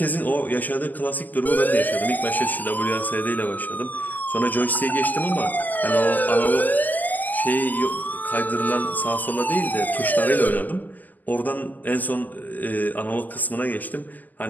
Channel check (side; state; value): right; late; 0.083 ms